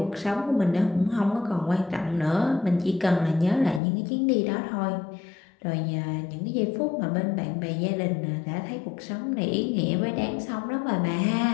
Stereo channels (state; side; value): drops out; right; at 3.8 s